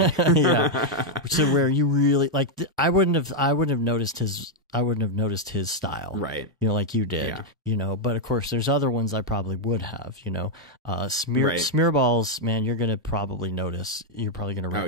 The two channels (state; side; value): normal; both; correlation -0.01